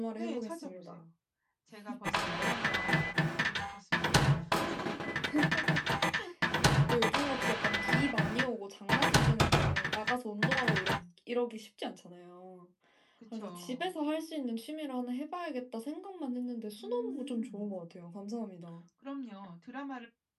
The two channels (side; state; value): both; identical; correlation 1.00